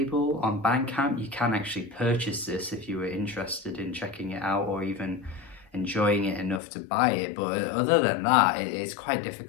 on Bandcamp. You can actually purchase this if you were interested in checking it out or even enjoying it enough to buy it. But other than that, it's quite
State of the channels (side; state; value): right; drops out; at 6.6 s